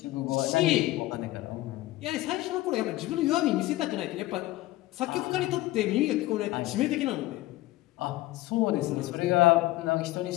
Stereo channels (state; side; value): quieter; right; 17.5 dB